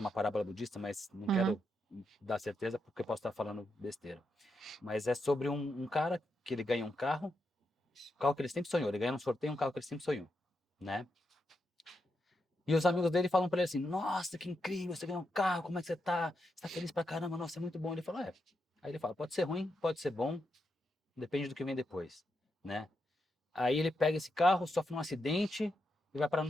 parábola budista, mas não uhum, quero dar certeza porque eu posso estar falando besteira. Mas é sobre um cara que ele ganha um carro que ele sempre sonhou. Ele ganha um sorteio um carro que ele sempre sonhou, né? E os amigos dele falam pra ele assim: Nossa, que incrível, você ganhou um carro, como é que você tá? Você tá feliz pra caramba, nossa, é muito bom. Ele fala: É. Aí ele fala: Pode ser ruim, pode ser bom, depende do que vem depois, né? Aí ele pega esse carro, sofre um acidente e vai parar no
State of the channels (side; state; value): both; normal; correlation 0.84